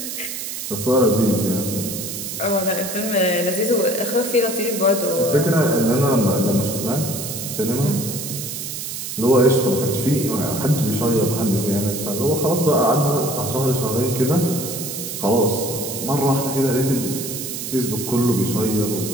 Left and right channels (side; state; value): right; noise; hiss, 6 dB below the sound